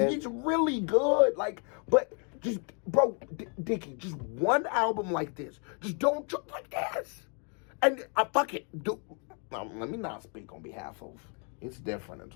He's really good, like, but just, bro, Dicky, just one album like this. Just don't jump like this. And fuck it, let me not speak on behalf of, it's different in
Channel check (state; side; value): quieter; right; 39.3 dB